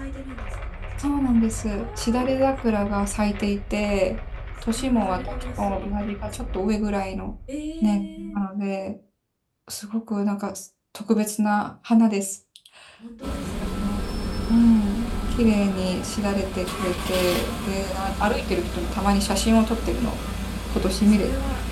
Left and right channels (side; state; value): both; identical; correlation 1.00